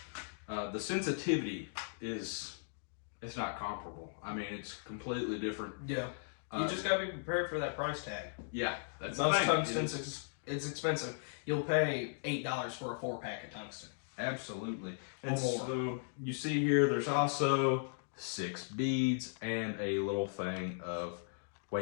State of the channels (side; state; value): right; silent; digital silence